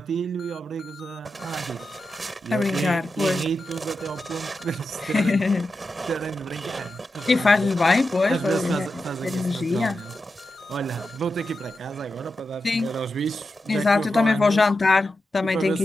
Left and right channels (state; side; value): normal; both; correlation 0.90